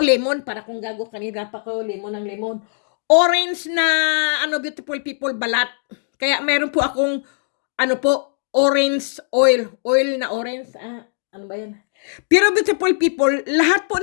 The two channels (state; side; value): silent; right; digital silence